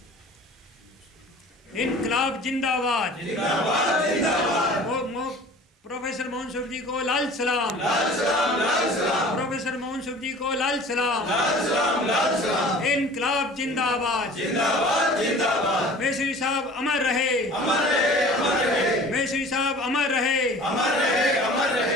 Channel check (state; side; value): normal; both; correlation 0.44